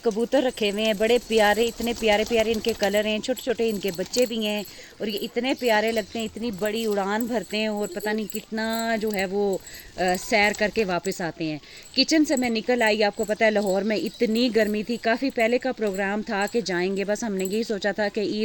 रखे हुए हैं, बड़े प्यारे, इतने प्यारे प्यारे इनके कलर हैं। छोटे छोटे इनके बच्चे भी हैं और ये इतने प्यारे लगते हैं, इतनी बड़ी उड़ान भरते हैं और पता नहीं कितना जो है वो सैर करके वापस आते हैं। किचन से मैं निकल आई, आपको पता है लाहौर में इतनी गर्मी थी। काफ़ी पहले का प्रोग्राम था कि जाएंगे, बस हमने यही सोचा था कि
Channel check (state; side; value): identical; both; correlation 1.00